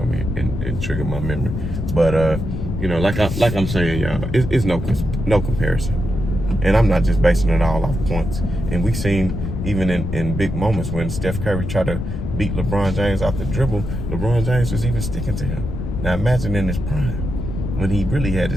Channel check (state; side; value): noise; left; rumble, 4 dB below the sound